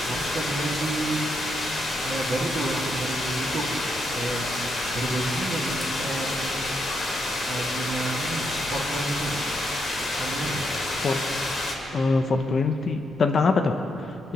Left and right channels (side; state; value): both; normal; correlation 0.80